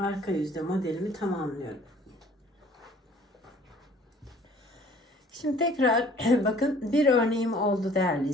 yüzde modelimi tamamlıyorum. Şimdi tekrar bakın bir örneğim oldu değerli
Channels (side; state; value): both; normal; correlation 0.53